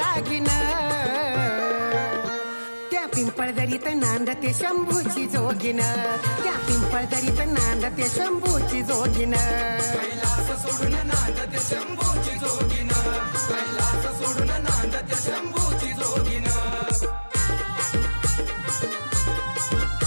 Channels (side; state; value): both; inverted; correlation -1.00